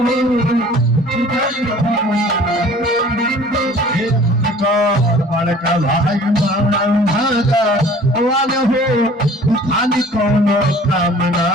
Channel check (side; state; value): both; normal; correlation 0.49